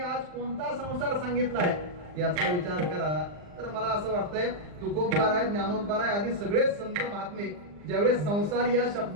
कोणता संसार सांगितलाय याचा विचार करा. तर मला असं वाटतंय तुकोबाराय ज्ञानोबाराय आदी सगळेच संत महात्मे ज्यावेळेस संसार या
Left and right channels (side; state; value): left; late; 39 ms